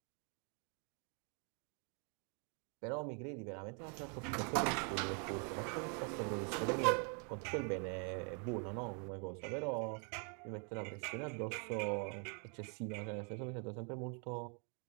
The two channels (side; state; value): left; quieter; 39.3 dB